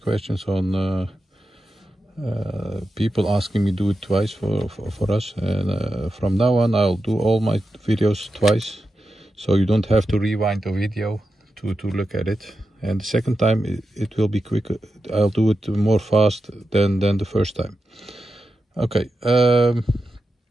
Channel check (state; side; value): normal; both; correlation 0.89